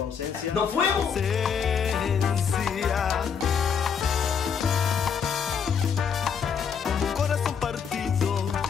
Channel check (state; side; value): quieter; right; 6.9 dB